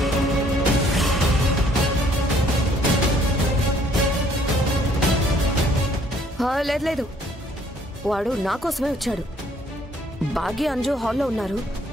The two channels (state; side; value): normal; both; correlation 0.62